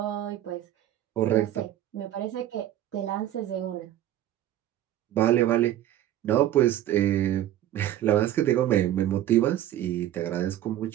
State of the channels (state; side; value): quieter; left; 12.5 dB